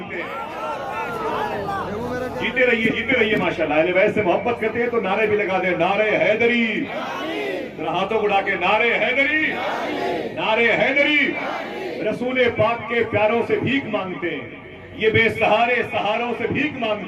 ہیں. جیتے رہیے ماشاءاللہ. اہل بیت سے محبت کرتے ہیں تو نعرے بھی لگا دیں, نعرے حیدری. ہاتھوں اڑا کے نعرے حیدری, نعرے حیدری. رسول پاک کے پیاروں سے بھیک مانگتے ہیں, یہ بے سہارے سہاروں سے بھیک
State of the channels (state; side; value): identical; both; correlation 1.00